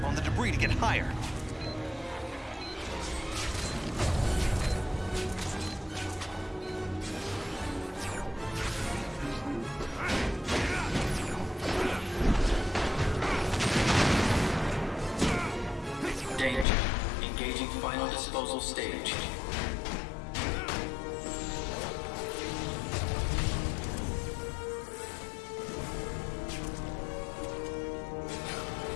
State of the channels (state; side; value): drops out; right; at 16.7 s